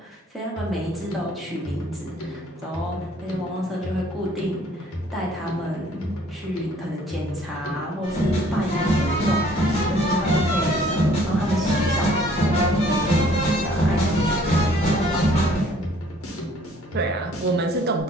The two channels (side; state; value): both; normal; correlation 0.58